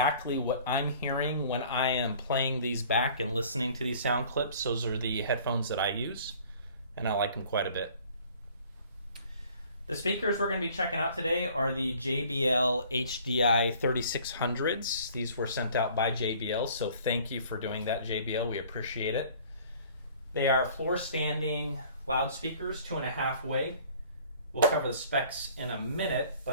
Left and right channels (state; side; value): inverted; both; correlation -0.52